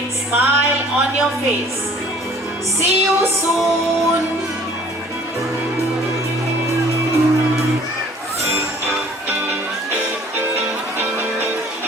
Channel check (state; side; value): normal; both; correlation 0.53